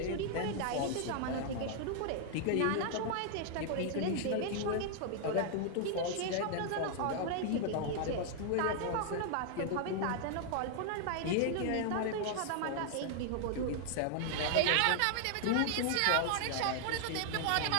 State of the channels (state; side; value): different; both; correlation 0.00